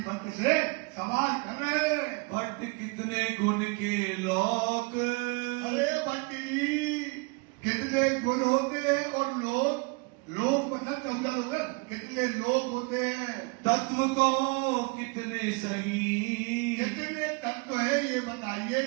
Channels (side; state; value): left; quieter; 29.8 dB